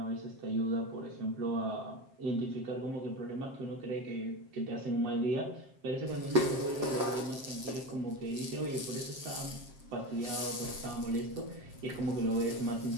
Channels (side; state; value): left; late; 7.6 ms